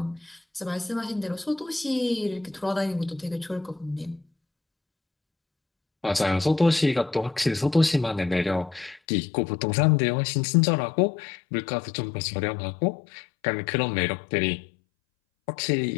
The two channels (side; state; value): right; drops out; at 9.0 s